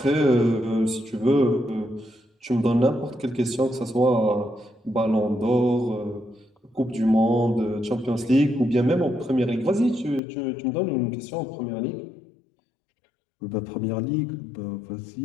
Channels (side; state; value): right; drops out; at 10.2 s